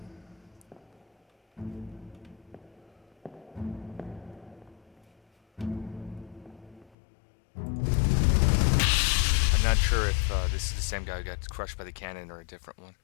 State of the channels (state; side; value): drops out; right; at 6.9 s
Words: I'm not sure if this is the same guy who got crushed by the cannon or a different one.